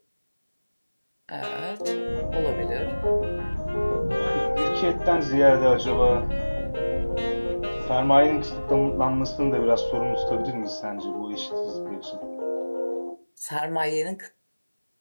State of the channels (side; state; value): both; inverted; correlation -1.00